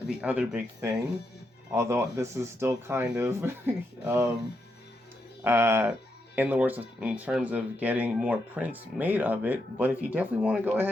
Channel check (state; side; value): normal; both; correlation 0.82